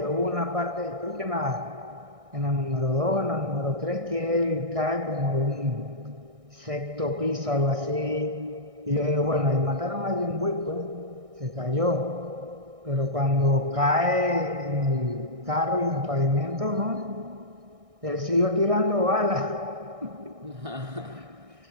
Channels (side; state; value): left; late; 1.6 ms